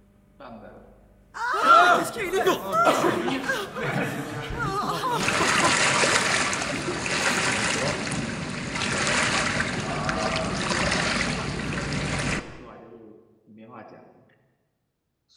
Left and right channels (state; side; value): identical; both; correlation 1.00